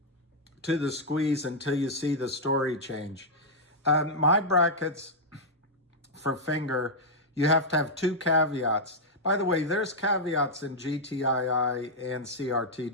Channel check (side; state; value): both; normal; correlation -0.05